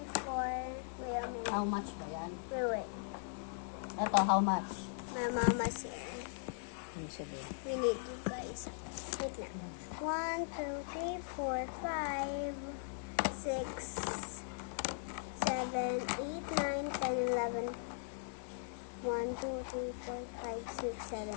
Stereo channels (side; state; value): right; silent; 52 dB below the other